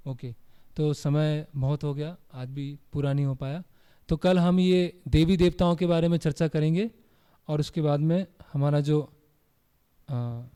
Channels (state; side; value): identical; both; correlation 1.00